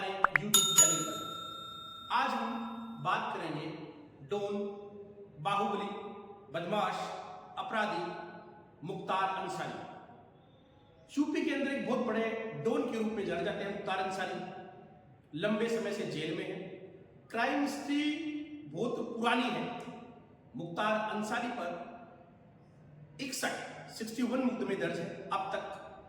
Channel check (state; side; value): identical; both; correlation 1.00